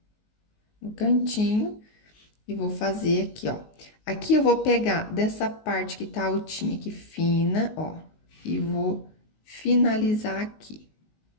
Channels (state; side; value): late; right; 19 ms